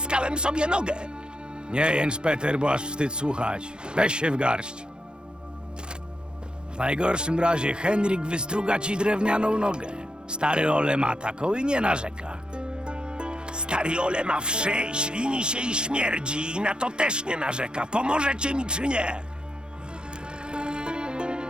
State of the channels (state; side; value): late; left; 0.049 ms